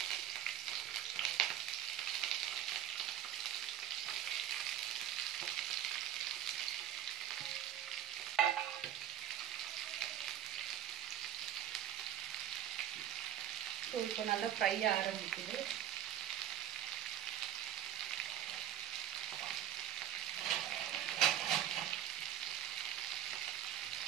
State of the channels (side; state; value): left; quieter; 11.0 dB